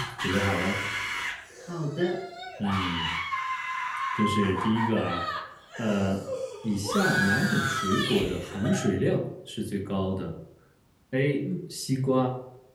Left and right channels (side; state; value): both; identical; correlation 1.00